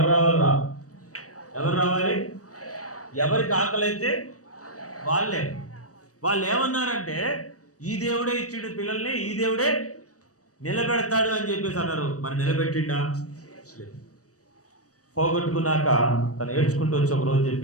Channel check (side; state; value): right; late; 0.66 ms